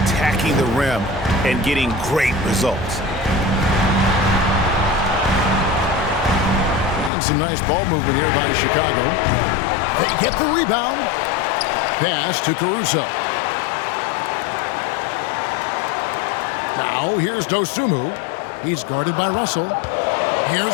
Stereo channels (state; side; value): drops out; right; at 7.1 s